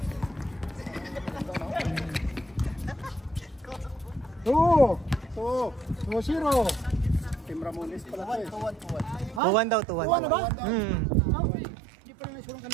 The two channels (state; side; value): drops out; left; at 9.4 s